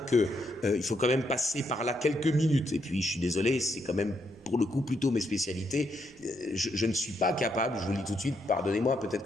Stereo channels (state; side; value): noise; right; rumble, 29 dB below the sound